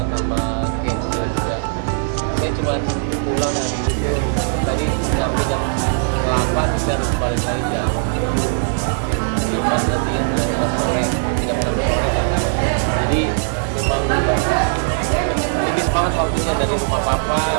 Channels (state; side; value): silent; left; digital silence